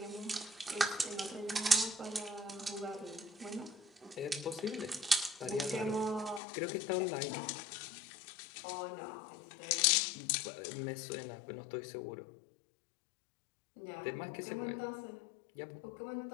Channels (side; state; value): right; drops out; at 6.4 s